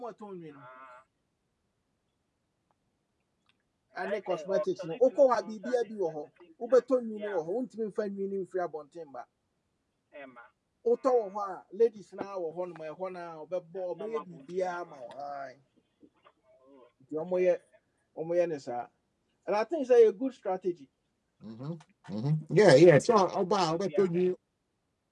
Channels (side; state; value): both; identical; correlation 1.00